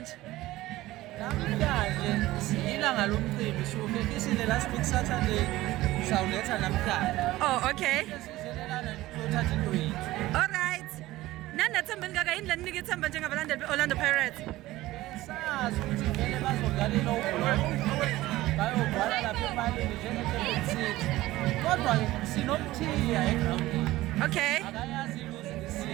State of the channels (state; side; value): quieter; left; 17.2 dB